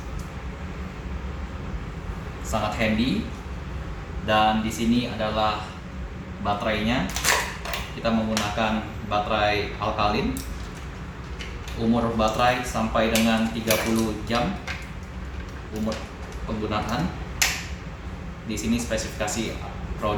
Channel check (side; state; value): both; identical; correlation 1.00